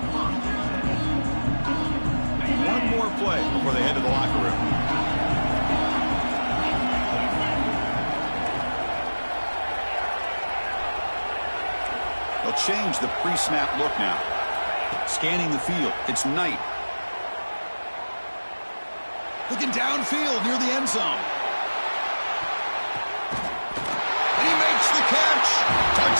One more play before they head to the locker room. They'll change the pre-snap look now. Scanning the field, it's Knight. Looking downfield near the end zone. And he makes the catch.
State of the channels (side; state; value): both; inverted; correlation -1.00